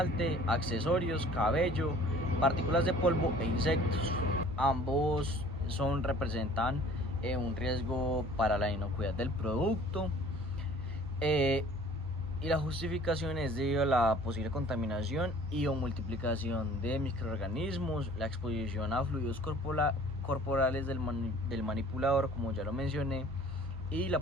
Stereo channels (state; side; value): normal; both; correlation 0.50